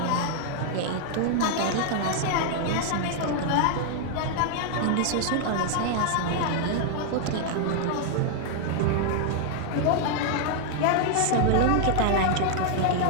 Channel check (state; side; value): different; both; correlation 0.00